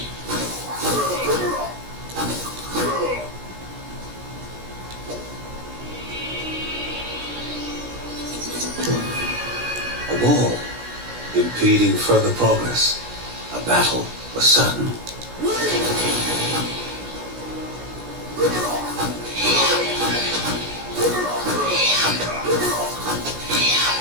A wall, impeding further progress. A battle was sudden.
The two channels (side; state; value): left; late; 16 ms